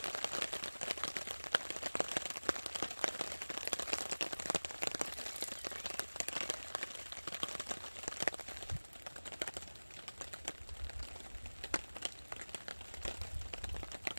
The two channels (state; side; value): inverted; both; correlation -1.00